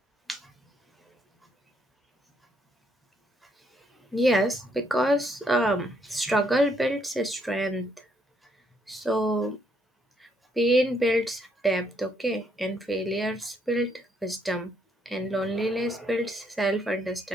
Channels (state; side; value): normal; both; correlation 0.72